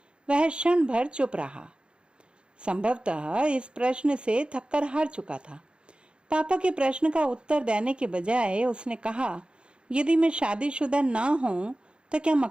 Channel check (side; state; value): left; late; 0.054 ms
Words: वह क्षण भर चुप रहा। संभवतः इस प्रश्न से थक्कर हार चुका था। पापा के प्रश्न का उत्तर देने के बजाय उसने कहा, यदि मैं शादीशुदा ना हूं तो क्या